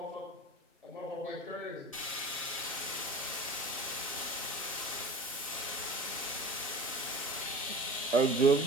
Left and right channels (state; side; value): normal; both; correlation 0.38